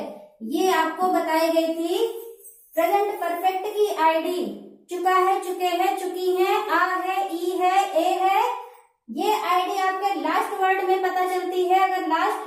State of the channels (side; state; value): both; identical; correlation 1.00